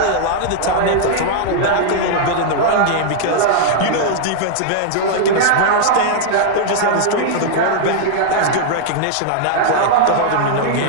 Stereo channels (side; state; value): both; different; correlation -0.01